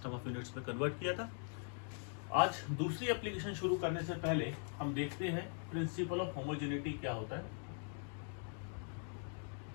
ऑफ यूनिट्स में कन्वर्ट किया था। आज दूसरी एप्लीकेशन शुरू करने से पहले हम देखते हैं प्रिंसिपल ऑफ होमोजेनिटी क्या होता है।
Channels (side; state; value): right; silent; 50 dB below the other